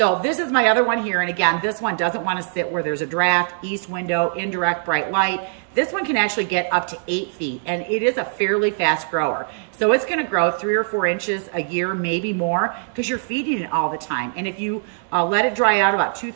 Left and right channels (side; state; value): left; silent; digital silence